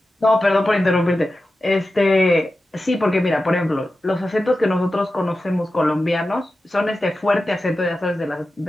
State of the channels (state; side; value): normal; both; correlation 0.93